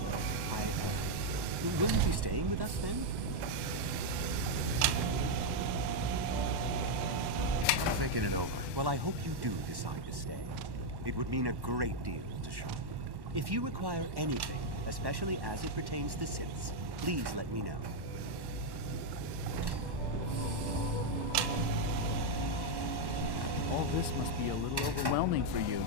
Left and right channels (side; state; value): left; late; 1.1 ms